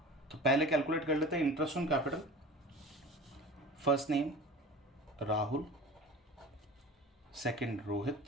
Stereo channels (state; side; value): normal; both; correlation 0.38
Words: तो पहले कैलकुलेट कर लेते हैं interest on capital. First name Rahul, second